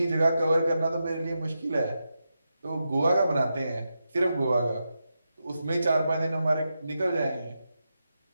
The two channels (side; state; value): both; inverted; correlation -0.88